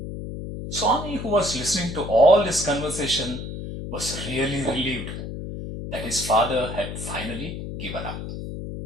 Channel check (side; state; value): left; noise; hum, 7 dB below the sound